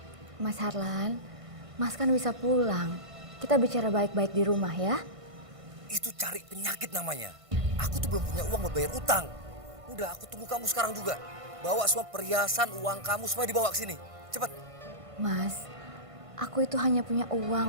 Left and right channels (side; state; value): left; late; 1.5 ms